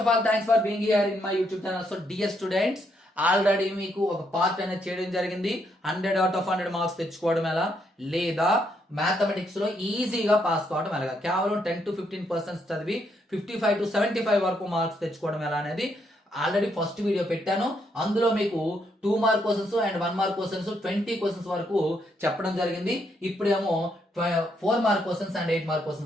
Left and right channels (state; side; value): normal; both; correlation 0.75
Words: all thanks for being here in my YouTube channel. So dear students, already మీకు ఒక part అనేది చేయడం జరిగింది. 100 out of 100 marks తెచ్చుకోవడం ఎలా, లేదా మ్యాథమెటిక్స్ లో ఈజీగా పాస్ కావడం ఎలా, కేవలం 10 to 15% చదివి 55 to 75 వరకు మార్క్స్ తెచ్చుకోవడం ఎలా అనేది ఆల్రెడీ ఫస్ట్ వీడియో పెట్టాను. అందులో మీకు 2 mark questions and 1 mark questions 20 questions వరకు చెప్పడం జరిగింది. ఇప్పుడేమో 4 mark questions and 8 mark